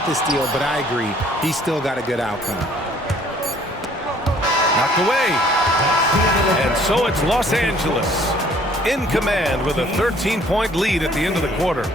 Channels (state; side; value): normal; both; correlation 0.58